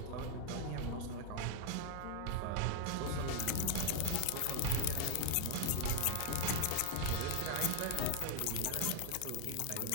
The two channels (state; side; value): different; both; correlation 0.00